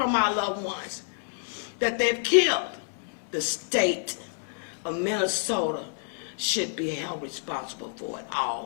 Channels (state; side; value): silent; right; digital silence